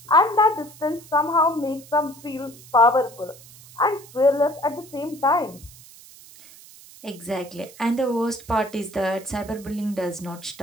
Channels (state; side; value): noise; right; hiss, 21 dB below the sound